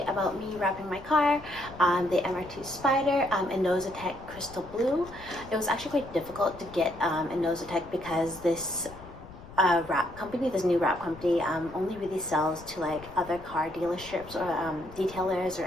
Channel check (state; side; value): noise; left; rumble, 18 dB below the sound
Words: about me wrapping my car, the MR2 Spyder Inozetek Crystal Blue. It was actually quite difficult to get Inozetek because this wrap company, this new wrap company, only really sells to like other car dealerships or detailers or